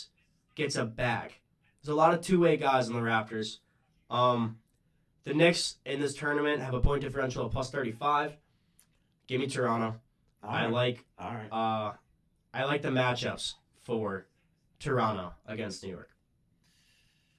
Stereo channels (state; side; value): identical; both; correlation 1.00